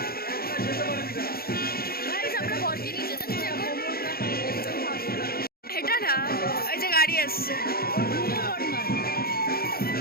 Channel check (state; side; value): late; right; 0.44 ms